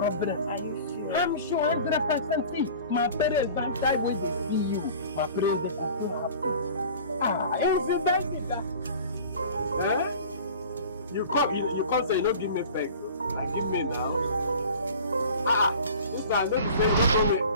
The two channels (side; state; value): both; inverted; correlation -0.42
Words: Are you sure? I'm sure 100%. See, my parents don't die when they see you. My parents, they are so happy. Incident is that. Eh? You come say you don't give me back. Like give me now. This time don't be saying don't go away.